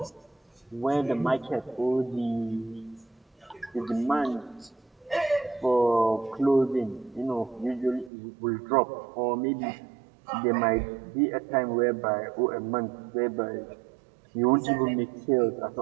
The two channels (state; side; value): drops out; left; at 8.1 s